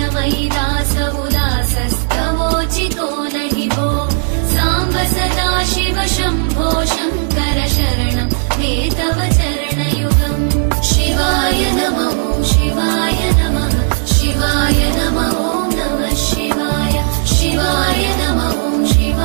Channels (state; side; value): silent; left; digital silence